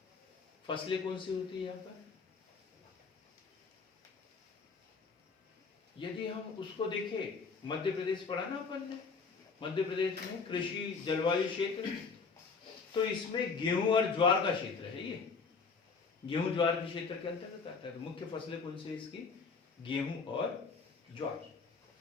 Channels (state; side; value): quieter; right; 4.9 dB